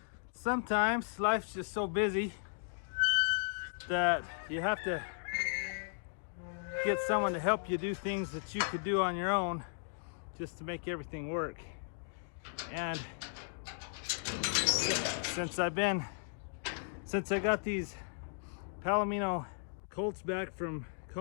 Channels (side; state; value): right; silent; digital silence